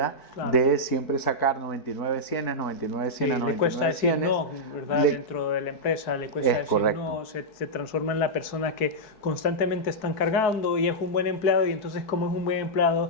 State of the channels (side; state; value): right; late; 4.6 ms